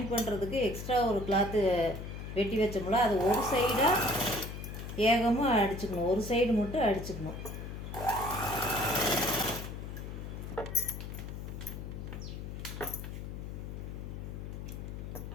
பண்ணுறதுக்கு எக்ஸ்ட்ரா ஒரு கிளாத்து வெட்டி வச்சோம்ல, அது ஒரு சைடாக ஏகமாக அடிச்சுக்கணும், ஒரு சைடு மட்டும் அடிச்சுக்கணும்.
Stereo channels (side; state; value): left; noise; hum, 8 dB below the sound